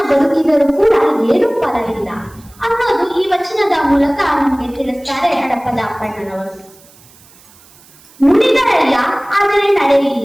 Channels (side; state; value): right; noise; hiss, 26 dB below the sound